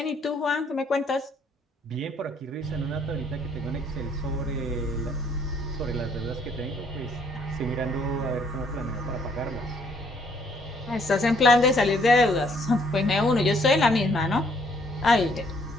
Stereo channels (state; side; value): normal; both; correlation 0.65